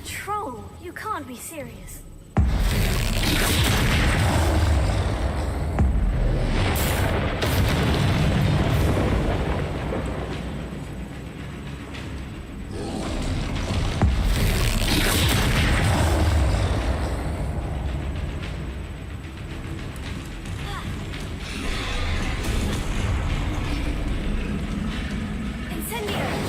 troll? You can't be serious.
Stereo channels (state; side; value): identical; both; correlation 1.00